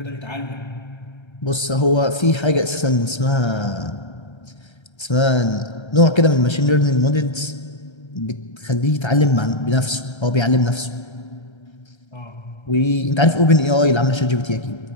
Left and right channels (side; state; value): right; late; 1.3 ms